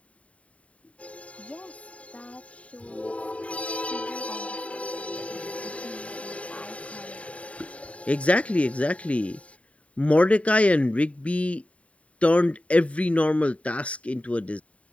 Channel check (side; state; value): right; late; 0.065 ms